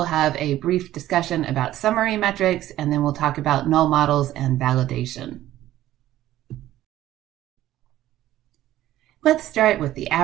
have a brief discussion about summary metrics, and then we'll talk about null models and validation. Let's start with the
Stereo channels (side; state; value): left; quieter; 14.0 dB